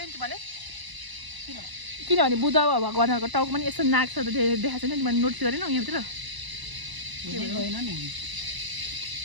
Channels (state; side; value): late; left; 1.0 ms